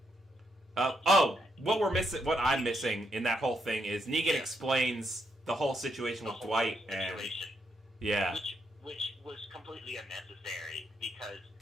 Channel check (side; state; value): both; normal; correlation 0.78